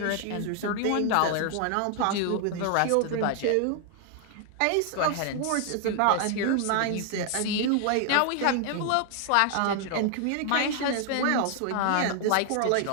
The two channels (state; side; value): different; both; correlation 0.00